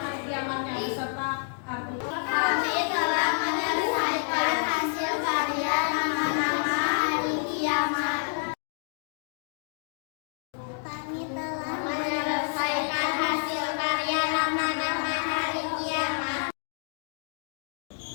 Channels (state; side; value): silent; right; 59 dB below the other